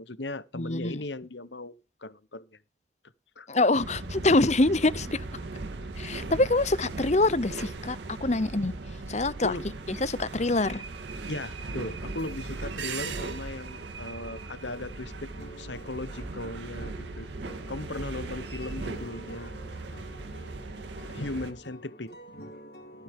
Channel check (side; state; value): both; normal; correlation 0.34